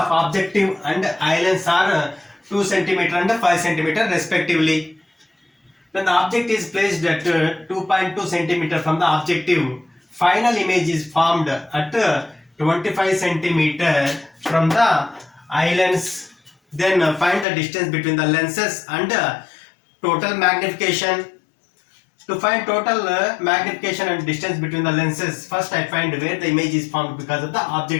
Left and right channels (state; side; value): drops out; right; at 17.4 s